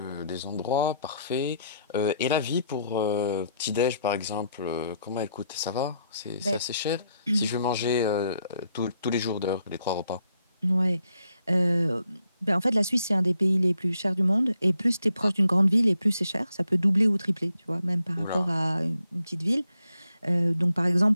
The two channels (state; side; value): inverted; both; correlation -0.75